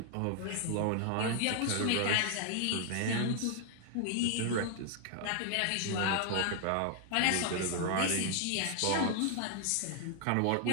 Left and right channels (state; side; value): different; both; correlation 0.00